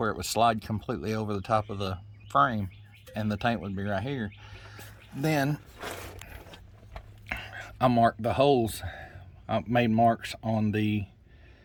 it would slide completely over the top of the frame and the tank would be right here, then I marked the holes. I made marks on the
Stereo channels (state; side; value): identical; both; correlation 1.00